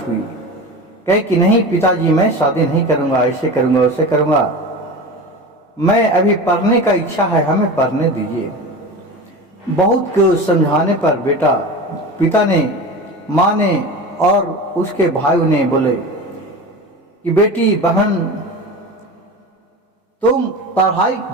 हुई। कहे कि नहीं पिताजी, मैं शादी नहीं करूँगा, ऐसे करूँगा, वैसे करूँगा। मैं अभी पढ़ने का इच्छा है, हमें पढ़ने दीजिए। बहुत को समझाने पर पिता ने, माँ ने और उसके भाइयों ने बोले कि बेटी बहन तुम पढ़ाई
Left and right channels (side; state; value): both; normal; correlation 0.30